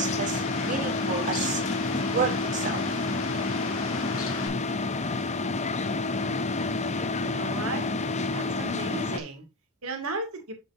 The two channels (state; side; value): normal; both; correlation 0.19